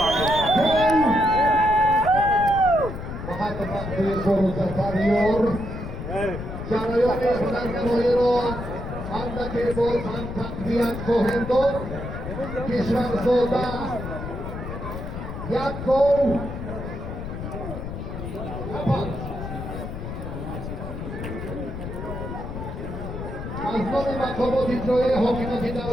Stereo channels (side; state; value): left; noise; rumble, 7 dB below the sound